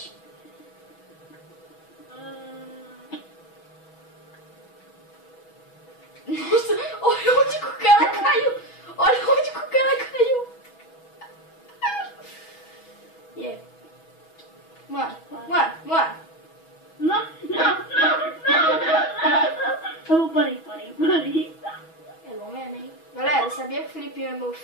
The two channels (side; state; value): right; late; 6.2 ms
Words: Nossa, olha onde que o cara caiu. Yeah. Mano. Não. Eu parei. É bom mesmo, hein? Galera, sabia que o Filipinho é meu